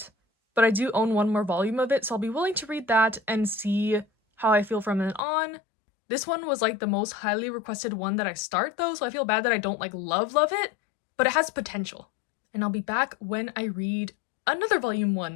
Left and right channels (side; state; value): right; drops out; at 5.2 s